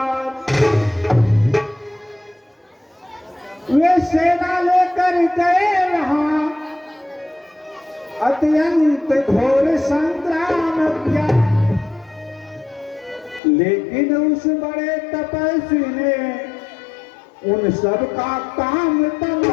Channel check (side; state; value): right; drops out; at 13.4 s